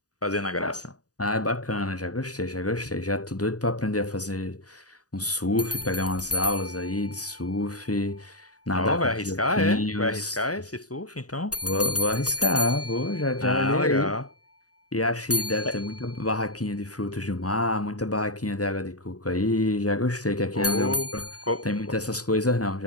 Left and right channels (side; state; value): right; late; 0.67 ms